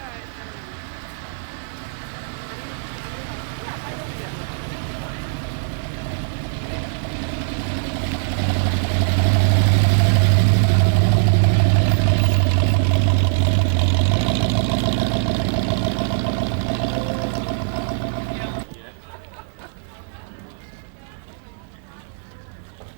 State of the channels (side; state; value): left; silent; digital silence